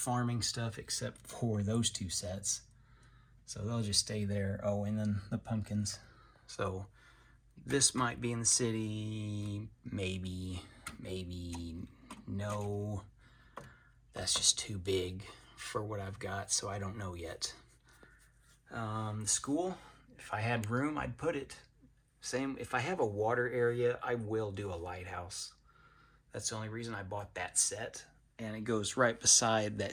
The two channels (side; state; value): both; identical; correlation 1.00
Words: stuff except for those 2 sets. So they'll just stay there. Oh, and then the pumpkins. So this might be in the city. Maybe, no. That's just too big for what I've got, so I don't know yet. The school, if I had room, I'd put it. Same, if I have a water area, I will do a lighthouse. That's the only reason I bought that set. And it goes right beside